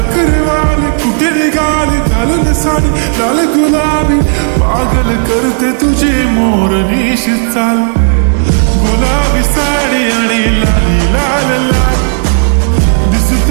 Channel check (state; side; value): silent; left; 58 dB below the other